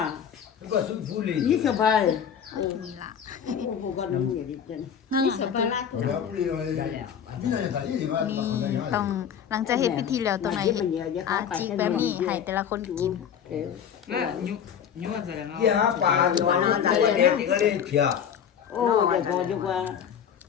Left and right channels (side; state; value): right; quieter; 8.2 dB